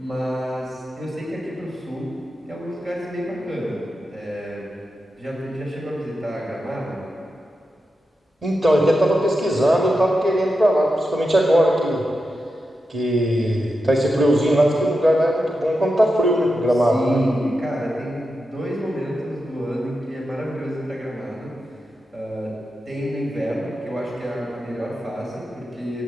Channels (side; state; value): both; normal; correlation 0.89